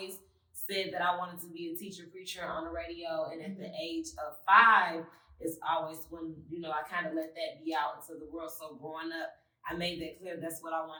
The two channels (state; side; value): identical; both; correlation 1.00